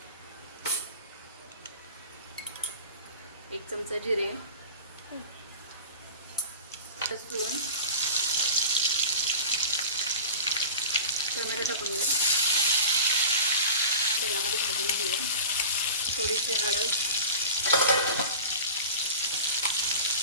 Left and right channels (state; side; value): inverted; both; correlation -0.34